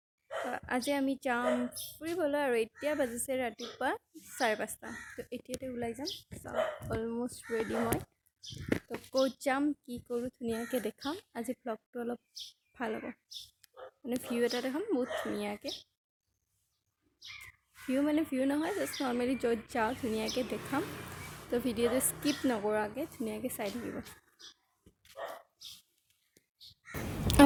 আজি আমি যাম ফুৰিবলৈ আৰু এতিয়া বাজিছে ৰাতিপুৱা 5:30। তো এতিয়াতে ওলাই যাম। অলমষ্ট ৰেডি মই। তো ক'ত যাম, কি কৰোঁ ধুনীয়াকৈ দেখাম। আজি ব্লগটো অলপ ভাল হ'ব, মানে ভিউ এটা দেখাম বহুত ধুনীয়াকৈ। ভিউ নহয়, জাষ্ট নৰ্মেলি য'ত যাওঁ ধুনীয়াকৈ দেখাম। তো ভিডিঅ'টো স্কিপ নকৰাকৈ ধুনীয়াকৈ চাই থাকিব।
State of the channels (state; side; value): identical; both; correlation 1.00